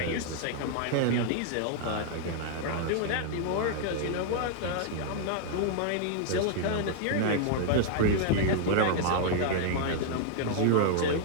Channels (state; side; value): different; both; correlation 0.00